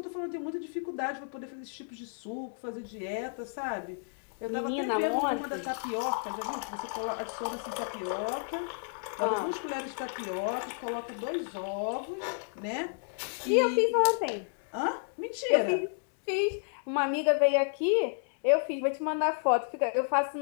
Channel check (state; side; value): silent; right; digital silence